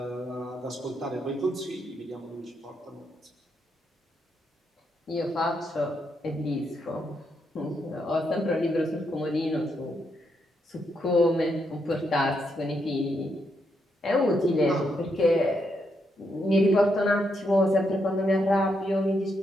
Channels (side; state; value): both; normal; correlation 0.80